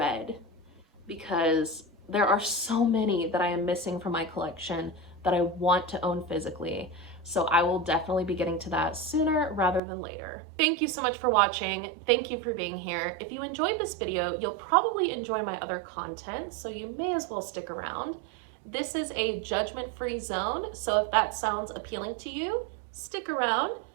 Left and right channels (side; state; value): left; drops out; at 9.8 s